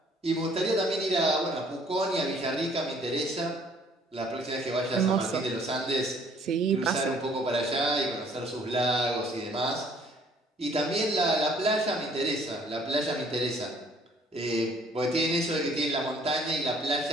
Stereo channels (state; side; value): normal; both; correlation 0.59